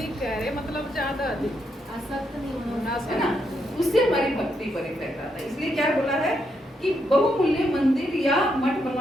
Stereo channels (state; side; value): normal; both; correlation 0.79